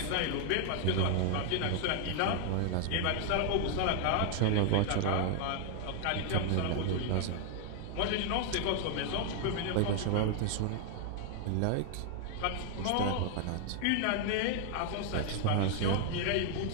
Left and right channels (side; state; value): both; different; correlation 0.00